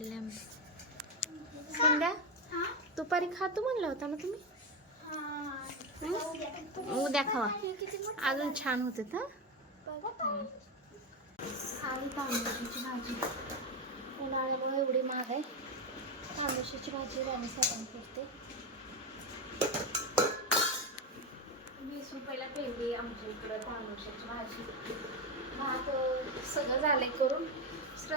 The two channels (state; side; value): normal; both; correlation 0.12